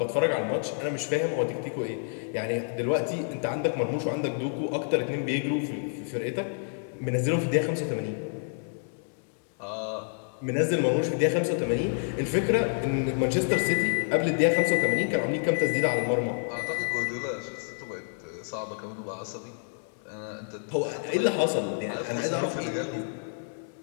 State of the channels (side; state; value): right; silent; digital silence